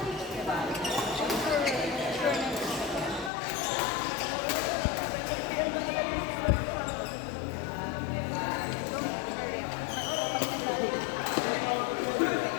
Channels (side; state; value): right; drops out; at 3.3 s